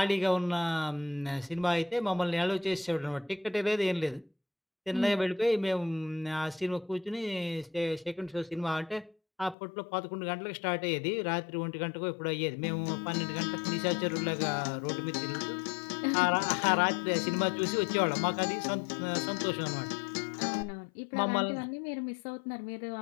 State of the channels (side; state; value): right; drops out; at 9.6 s